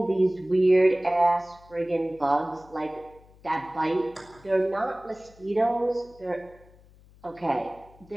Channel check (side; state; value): left; noise; hum, 26 dB below the sound